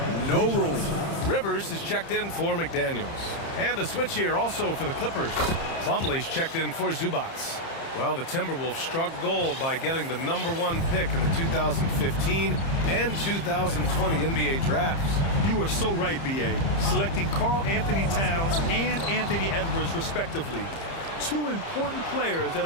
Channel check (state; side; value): late; right; 30 ms